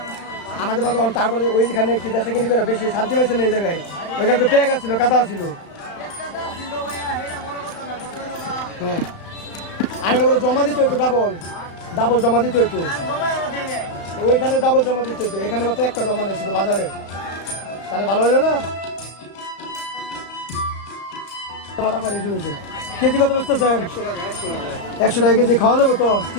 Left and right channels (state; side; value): late; right; 34 ms